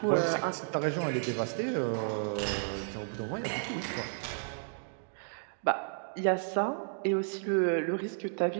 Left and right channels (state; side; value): silent; left; digital silence